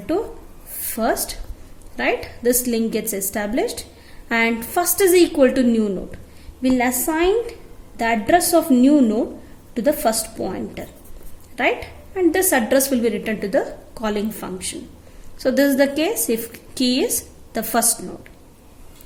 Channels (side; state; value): both; identical; correlation 1.00